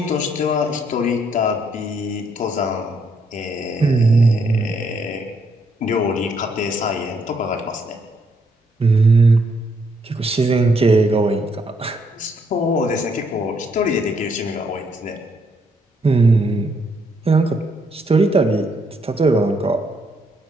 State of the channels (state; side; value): normal; both; correlation 0.73